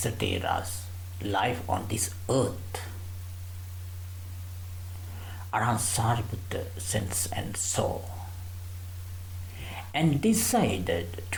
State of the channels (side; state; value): both; identical; correlation 1.00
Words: Thera's life on this earth, Arhat Sariputta sensed and saw and decided